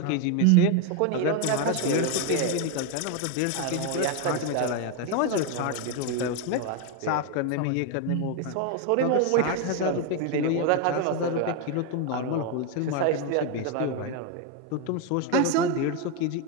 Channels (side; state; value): both; different; correlation 0.02